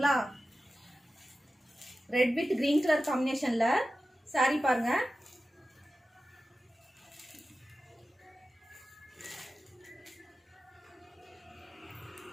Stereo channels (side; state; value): both; normal; correlation 0.94